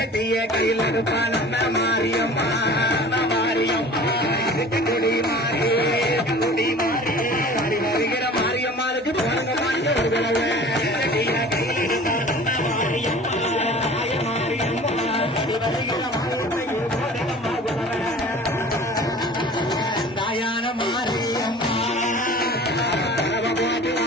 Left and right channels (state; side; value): normal; both; correlation 0.43